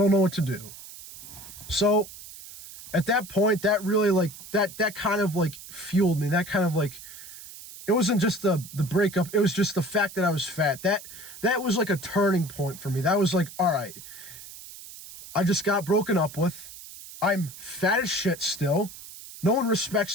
know what to do. So at that point, that really like that kind of like fueled me. That kind of like, it wasn't just the breakup, it was just the fact that I was fat. That was like a turning point for me. That was like, all right, I just got broken up with. I'm fat as shit still. No one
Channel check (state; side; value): noise; right; hiss, 15 dB below the sound